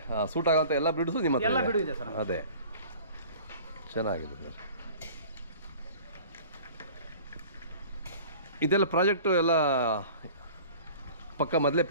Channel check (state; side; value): inverted; both; correlation -0.44